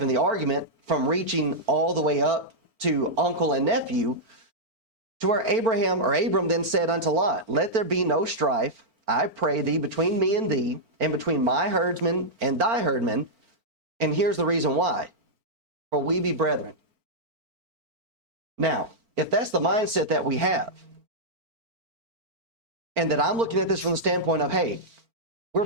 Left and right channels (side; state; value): left; late; 4.4 ms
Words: the argument from reaching all the way up to uncle and nephew, to where Abram then said unto Lot, let there be no strife, I pray thee, between me and thee, and between my herdsmen and thy herdmen. And here's the reason why. For we be brethren. Now, if that's the mindset that we have, and that I'm looking at this from the standpoint of, hey, we're